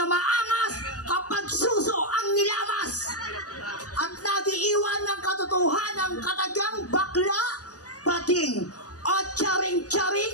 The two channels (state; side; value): late; right; 0.67 ms